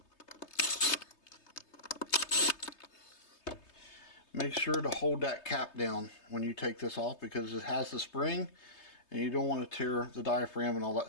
Make sure to hold that cap down when you take this off, because it has the spring and you don't want to tear the diaphragm and all that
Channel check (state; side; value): late; right; 3.3 ms